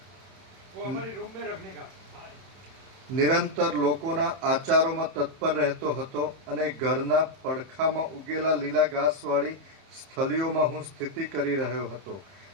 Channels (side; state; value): left; late; 31 ms